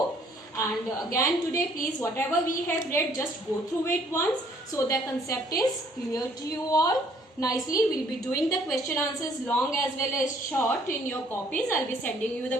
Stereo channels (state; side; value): normal; both; correlation 0.62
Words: And again today, please, whatever we have read, just go through it once so the concept is clear to you all. Nicely, we'll be doing the question answers long as well as short in your copies. I'll be sending you the